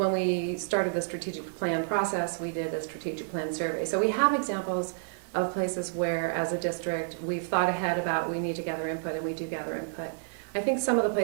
we started the strategic plan process, we did a strategic plan survey. So we have examples of places where, as a district, we've thought ahead about we need to gather input, and we do gather input. I think some of the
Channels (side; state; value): left; silent; digital silence